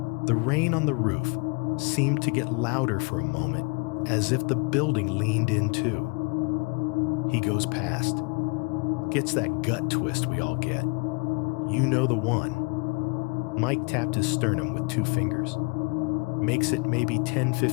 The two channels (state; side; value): quieter; right; 32.2 dB